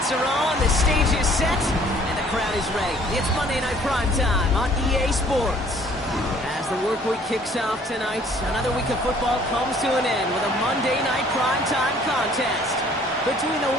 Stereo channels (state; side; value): normal; both; correlation 0.57